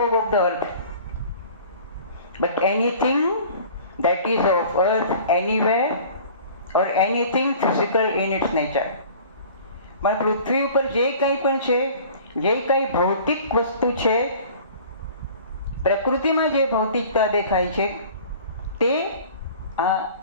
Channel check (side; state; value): both; inverted; correlation -0.46